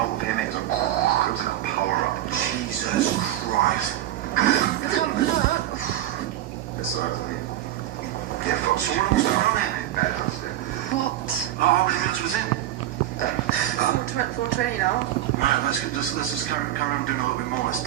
of him, it was like a power-up. Jesus Christ. I can't look. It's alright, mate. Yeah, fuck. So what was going on then? What? Oh, how many minutes was in? 420 now. Right, let's just carry on doing a little bit more. Let's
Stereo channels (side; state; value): left; quieter; 13.2 dB